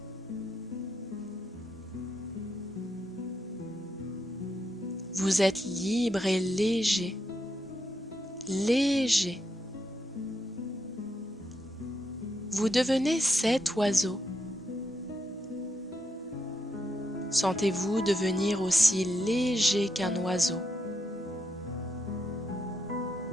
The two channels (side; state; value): both; normal; correlation 0.81